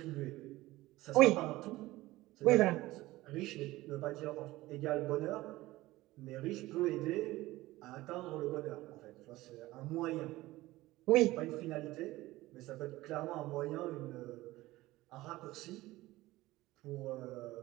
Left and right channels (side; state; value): left; quieter; 18.1 dB